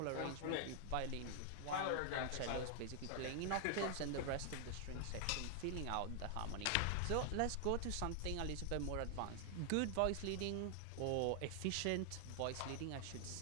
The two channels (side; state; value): both; different; correlation 0.00